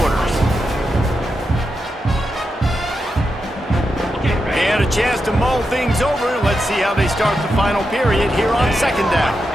They had a chance to mull things over. Let's see how they start the final period here on 2nd down.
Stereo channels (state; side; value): normal; both; correlation 0.87